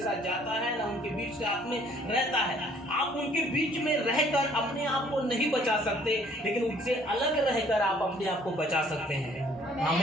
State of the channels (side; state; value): both; normal; correlation 0.60